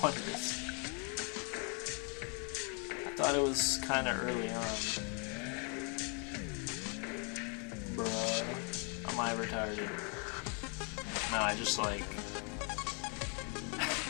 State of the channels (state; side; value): quieter; right; 37.5 dB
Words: one it is. Thought it was kind of early on. Bruh. Am I retarded? No, I just like...